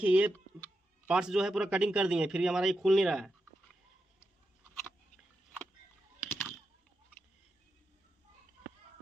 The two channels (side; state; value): both; normal; correlation 0.87